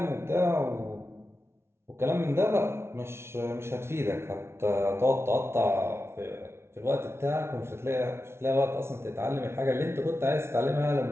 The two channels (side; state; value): left; late; 0.12 ms